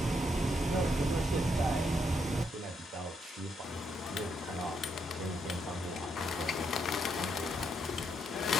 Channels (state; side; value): normal; both; correlation 0.77